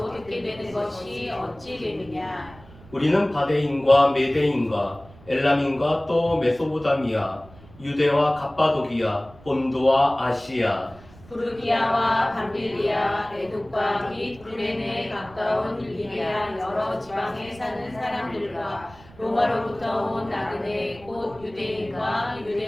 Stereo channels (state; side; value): noise; right; rumble, 22 dB below the sound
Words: 듣게 되는 것이 어찌 됨이냐. 우리는 바데인과 메데인과 엘람인과 또 메소보다미아, 유대와 갑바도기아, 본도와 아시아, 부르기아와 밤빌리아, 에돔과 및 구레네에 가까운 리비아 여러 지방에 사는 사람들과 로마로부터 온 나그네 곧 유대인과